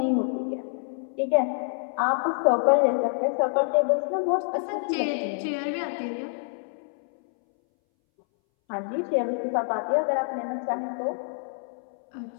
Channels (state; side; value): silent; right; 60 dB below the other